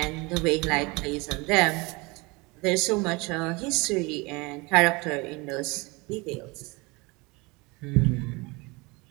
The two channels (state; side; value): quieter; left; 25.8 dB